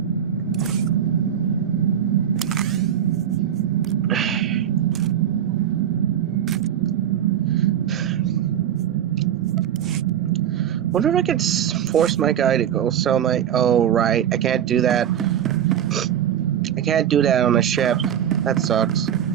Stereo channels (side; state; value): left; quieter; 9.8 dB